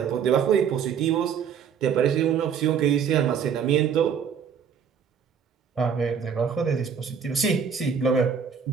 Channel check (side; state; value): left; quieter; 7.2 dB